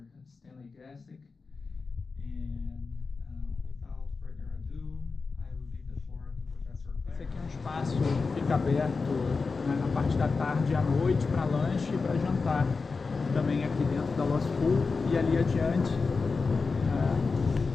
Stanley Gastick. And without further ado, I will leave the floor to Professor Clare. Esse aqui é um espaço que fica aberto, né, na parte da tarde e à noite para lanche e para jantar. Também aqui dentro da Law School, e ali adiante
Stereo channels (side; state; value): right; quieter; 4.4 dB